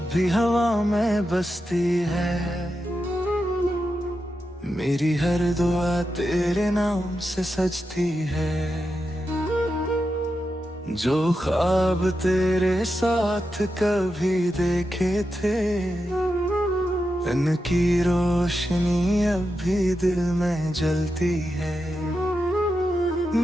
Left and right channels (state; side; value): normal; both; correlation 0.88